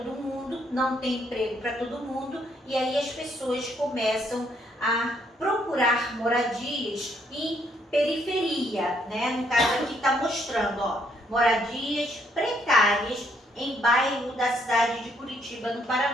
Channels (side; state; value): both; normal; correlation 0.70